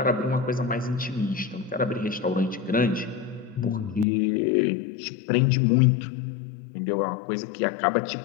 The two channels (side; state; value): right; drops out; at 4.0 s